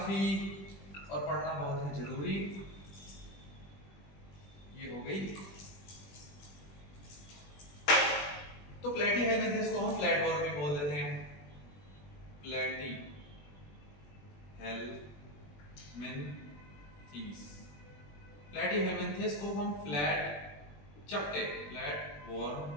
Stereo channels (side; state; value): right; late; 21 ms